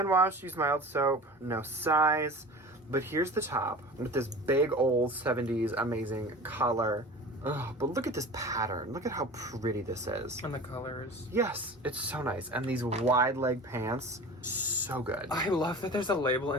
wash, use mild soap. No size. But here's the top with this big old 70s amazing color. Ugh, but look at this pattern. Look at how pretty this is. And the colors. Yes, it's so nice. And these wide leg pants, so good. I love that there's a label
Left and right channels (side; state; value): both; normal; correlation 0.37